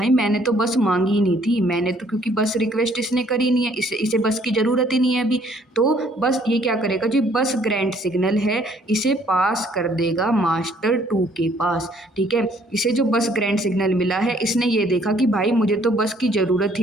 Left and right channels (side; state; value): both; normal; correlation 0.63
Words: मैंने तो बस मांगी ही नहीं थी, मैंने तो, क्योंकि बस रिक्वेस्ट इसने करी नहीं है, इसे बस की ज़रूरत ही नहीं है अभी। तो बस ये क्या करेगा, जो बस ग्रांट सिग्नल है इसे पास कर देगा मास्टर 2 के पास। ठीक है, इसे जो बस ग्रांट सिग्नल मिला है इसने ये देखा कि भाई मुझे तो बस की ज़रूरत